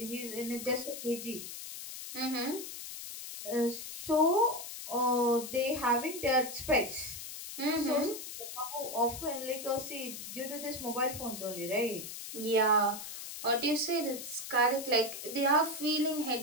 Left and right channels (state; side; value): noise; left; hiss, 9 dB below the sound